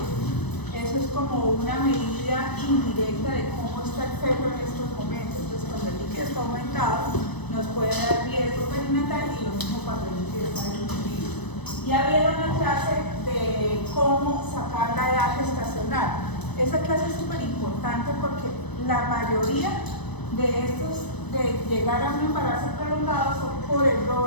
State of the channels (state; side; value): late; right; 0.99 ms